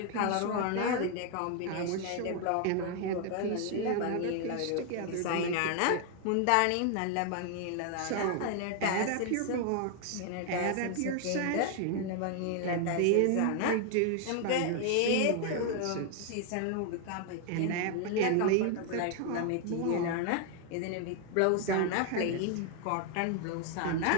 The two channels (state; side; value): different; both; correlation 0.00